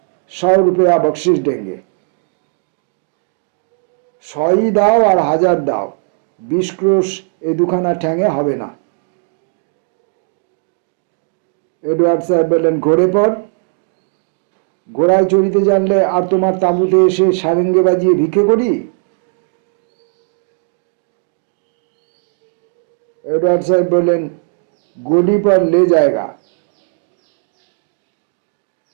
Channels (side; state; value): left; silent; 59 dB below the other